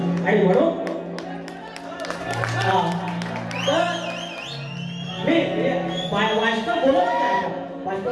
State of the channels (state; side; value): identical; both; correlation 1.00